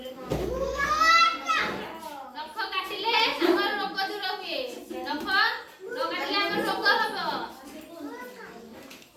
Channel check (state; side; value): identical; both; correlation 1.00